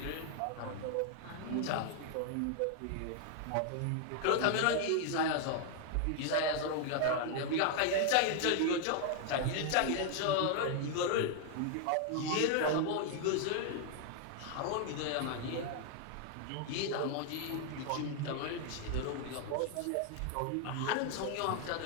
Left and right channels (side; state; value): both; different; correlation 0.00